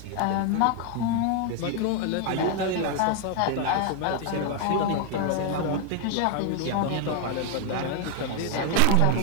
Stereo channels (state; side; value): different; both; correlation 0.01